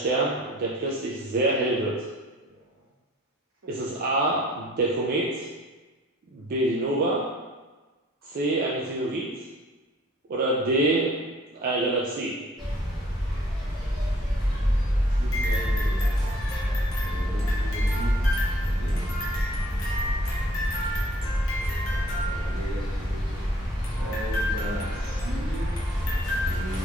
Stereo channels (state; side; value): normal; both; correlation 0.57